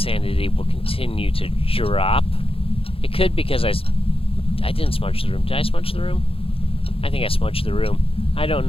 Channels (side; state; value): right; late; 0.27 ms